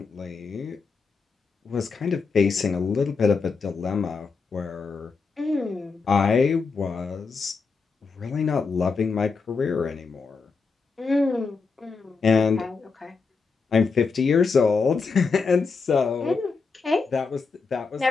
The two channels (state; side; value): quieter; right; 4.7 dB